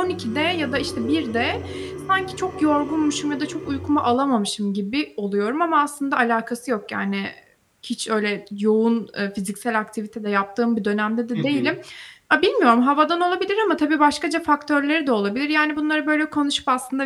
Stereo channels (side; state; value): both; identical; correlation 1.00